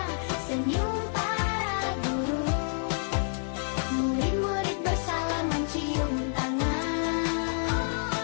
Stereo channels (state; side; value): silent; right; digital silence